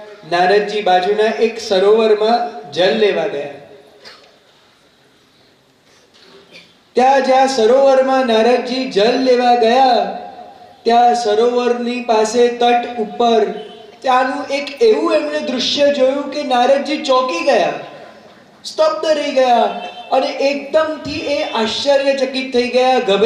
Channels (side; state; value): both; identical; correlation 1.00